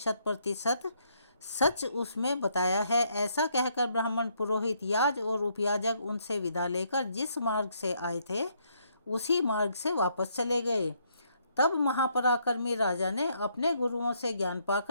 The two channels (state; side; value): inverted; both; correlation -0.72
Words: सच उसमें बताया है। ऐसा कहकर ब्राह्मण, पुरोहित, याज और उपयाजक उनसे विदा लेकर जिस मार्ग से आए थे उसी मार्ग से वापस चले गए। तब महापराक्रमी राजा ने अपने गुरुओं से ज्ञान